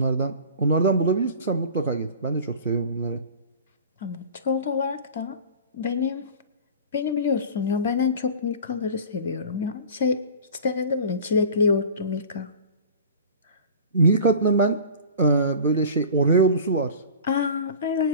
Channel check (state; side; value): inverted; both; correlation -0.38